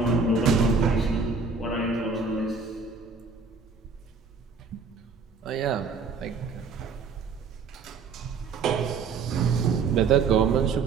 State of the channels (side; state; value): left; quieter; 5.0 dB